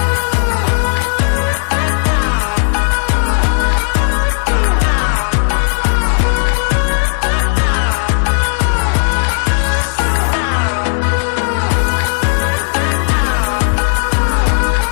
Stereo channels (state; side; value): silent; right; 65 dB below the other